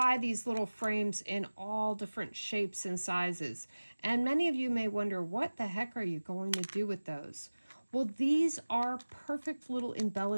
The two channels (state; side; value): inverted; both; correlation -1.00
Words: these little frames in all different shapes and sizes. And many of you may wonder, what the heck are you going to do with those? Well, these are perfect little